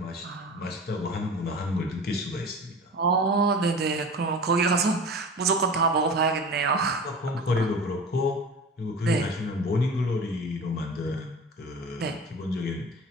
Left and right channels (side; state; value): both; normal; correlation 0.36